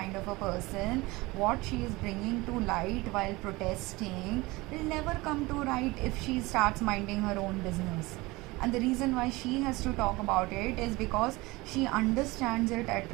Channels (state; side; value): quieter; left; 22.0 dB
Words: of a person, what she is bringing to light while protesting will never come to light if she starts minding her own business. And the reason why she has to talk about it is because she understands it at